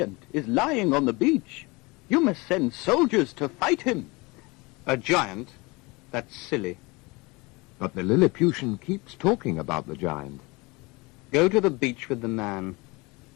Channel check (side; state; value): right; quieter; 25.3 dB